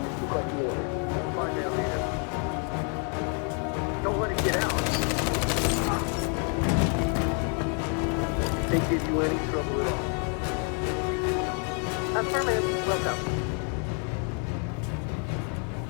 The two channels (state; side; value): quieter; right; 39.8 dB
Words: Don't let it get out. They give you any trouble at all. Affirmative. Welcome.